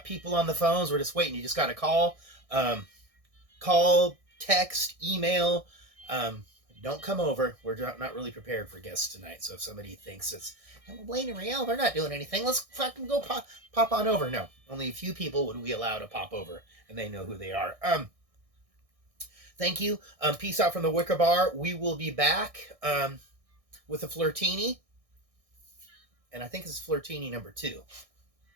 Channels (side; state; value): left; late; 1.6 ms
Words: people on the phones. We're just waiting. You just got to call. Call, text, email. Um, don't come over. We're not really prepared for guests tonight. So if somebody thinks it's Blaine and Riel, they're not doing anything, let's fucking go pop on over. No, only a few people would we allow to pop over, and they know who they are. Thank you. Peace out from the Wicker Bar. We will be back with a Flirtini, and I think it's Flirtini number 2.